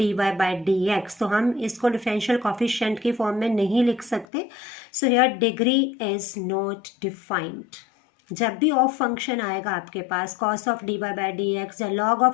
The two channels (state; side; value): drops out; right; at 4.2 s